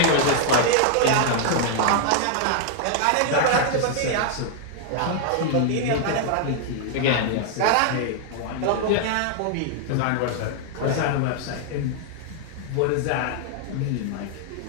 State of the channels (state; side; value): different; both; correlation 0.00